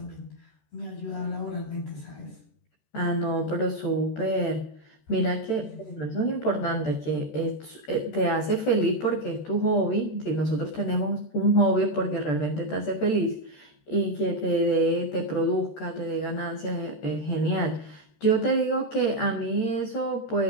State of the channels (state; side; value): late; right; 13 ms